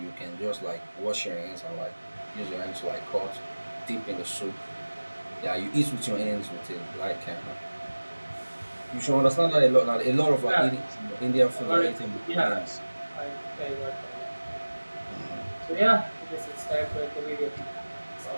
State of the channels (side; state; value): both; inverted; correlation -1.00